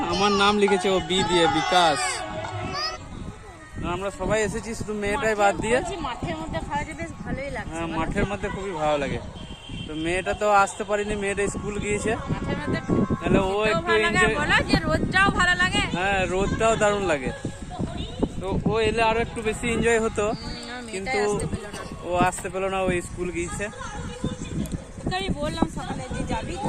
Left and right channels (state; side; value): identical; both; correlation 1.00